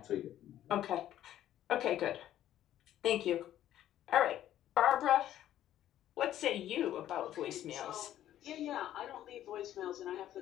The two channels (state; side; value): quieter; right; 12.2 dB